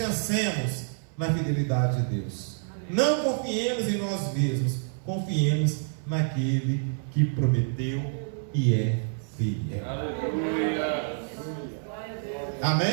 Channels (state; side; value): silent; left; 60 dB below the other